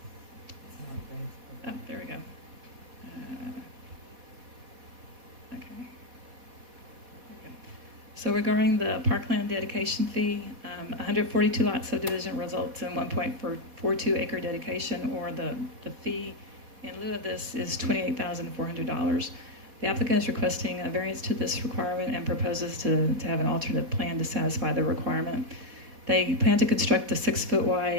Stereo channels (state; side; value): late; left; 4.1 ms